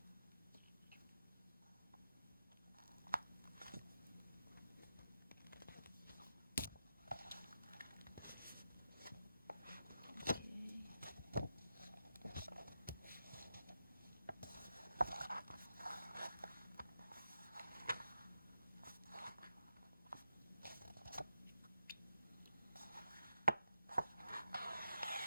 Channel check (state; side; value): inverted; both; correlation -0.88